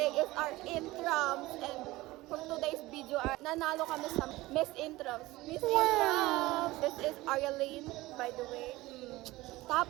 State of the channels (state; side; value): quieter; left; 19.1 dB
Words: is our intrams and for today's video, nanalo kami sa Miss Intrams. Miss Intrams! This is Arialine, by the way.